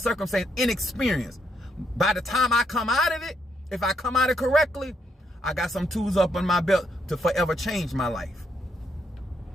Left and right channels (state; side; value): normal; both; correlation 0.76